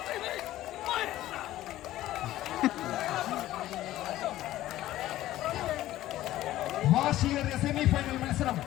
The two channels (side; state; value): right; quieter; 14.7 dB